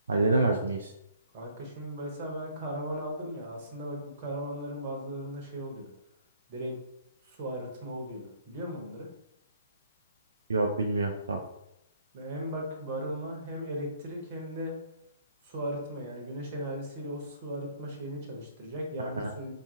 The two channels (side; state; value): both; inverted; correlation -0.61